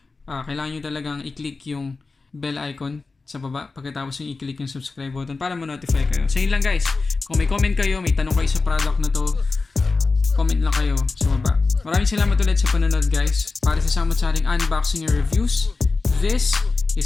kailangan nyo talagang i-click yung bell icon sa baba pagkatapos yung i-click yung subscribe button para ma-notify kayo. So, yun lang guys. Kung may comment kayo, may tanong kayo sa product na to, comment lang kayo sa baba. Maraming salamat ulit sa panonood guys. Para sa samot-saring unboxing and reviews, this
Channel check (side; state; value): right; quieter; 3.9 dB